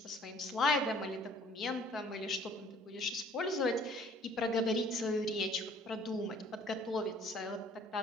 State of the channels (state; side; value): normal; both; correlation 0.55